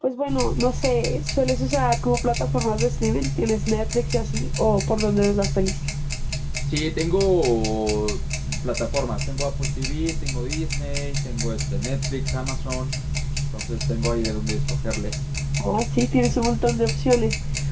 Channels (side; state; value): both; identical; correlation 1.00